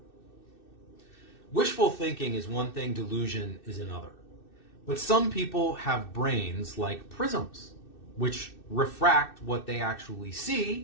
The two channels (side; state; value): right; late; 2.6 ms